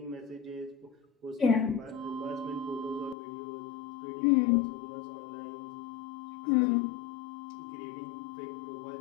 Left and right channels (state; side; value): drops out; right; at 3.2 s